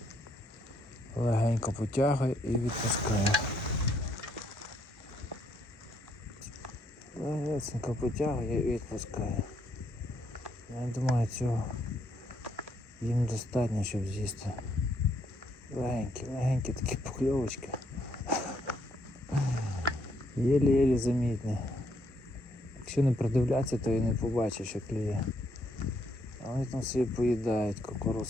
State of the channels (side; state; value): both; normal; correlation 0.72